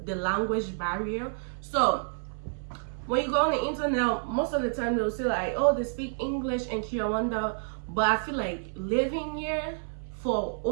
the language barrier. So when you go on the internet, most of the time they'll say like, oh, they speak English and Kinyarwanda. But I feel like living here for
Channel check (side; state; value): left; silent; 58 dB below the other